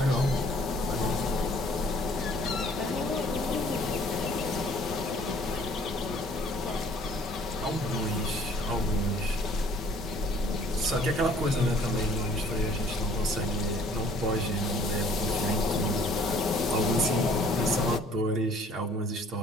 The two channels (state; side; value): normal; both; correlation 0.56